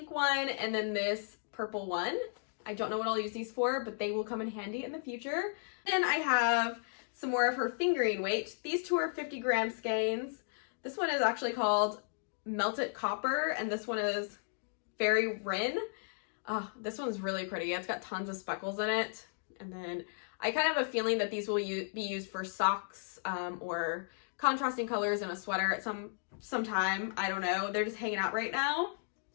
one and then this purple one. I don't know what I'll use these for, but they will come in handy in the future. Then I have some more of her fingering weight. These two are 50 gram skeins. This one is actually called Melted Copper, and this one is Fairy Wren. This one's really pretty. It's got tons of speckles in it. And then I kind of have a feeling that these will be used for socks or contrasting colors in a sweater at some time. I don't know. They're just hanging out right now.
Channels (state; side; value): silent; right; digital silence